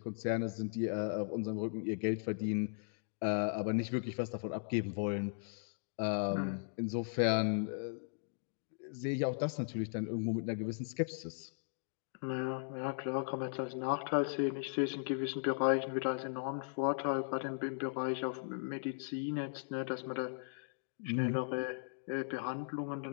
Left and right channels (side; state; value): right; silent; digital silence